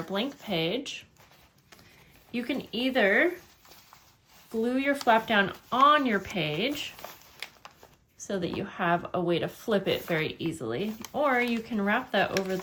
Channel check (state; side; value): identical; both; correlation 1.00